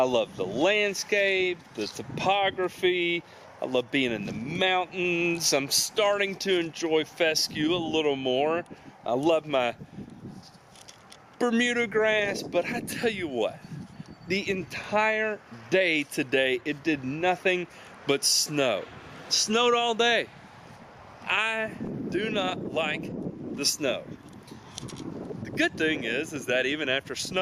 love the landscape, the topography. I love being in the mountains. I'm starting to enjoy fescue a little more. I love my Bermuda grass, but I tell you what, the entire day today, it did nothing but snow. It snowed all day. I do not like the snow. The good thing is that even after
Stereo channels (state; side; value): identical; both; correlation 1.00